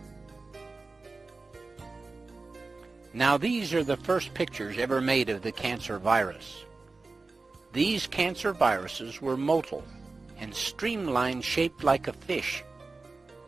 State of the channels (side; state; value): left; quieter; 3.7 dB